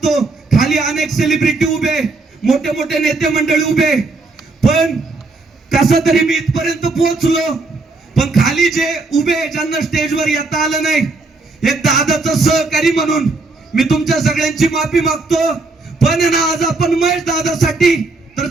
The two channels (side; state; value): left; quieter; 3.5 dB